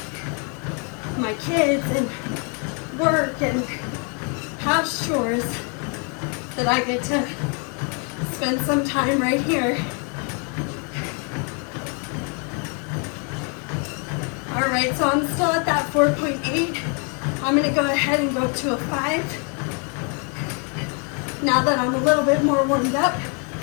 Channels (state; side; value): quieter; right; 37.4 dB